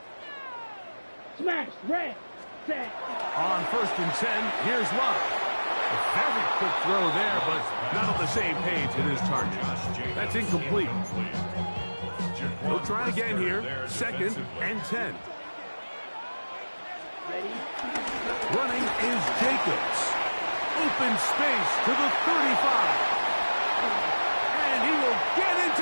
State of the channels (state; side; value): inverted; both; correlation -1.00